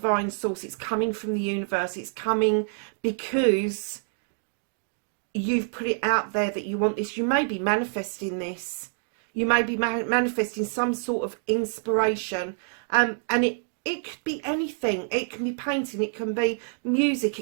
source. It's coming from the universe. It's coming because you've put it out there that you want this. You may be manifesting this. You may be manifesting some sort of inspiration. And it could be anything. It can be painting. It can be music.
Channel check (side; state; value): left; silent; digital silence